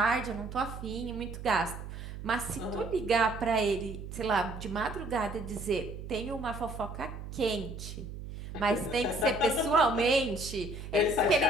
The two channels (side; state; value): right; noise; hum, 10 dB below the sound